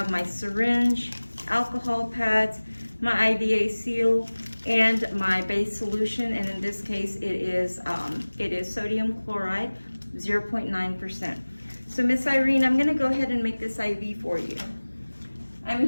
my syringe, alcohol pads, my IVA seal, and my base solution, and in this case it is sodium chloride 0.9%. So Miss Irene, I'm going to go ahead and make this IV for you.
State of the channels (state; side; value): inverted; both; correlation -1.00